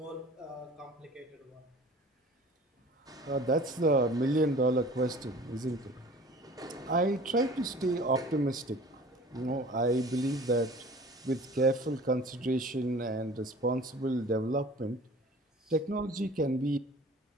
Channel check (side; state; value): both; normal; correlation 0.45